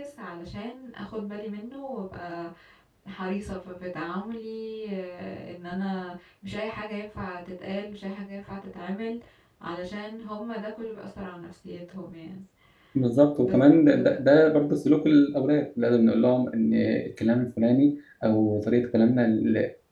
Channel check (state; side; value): identical; both; correlation 1.00